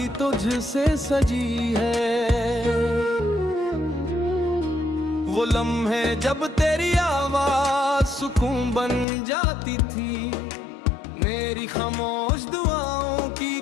तुझसे सजी है। वो लम्हे जब तेरी आवाज सुकून बन जाती थी, मेरी खामोश दुआओं की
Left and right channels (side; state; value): right; drops out; at 9.1 s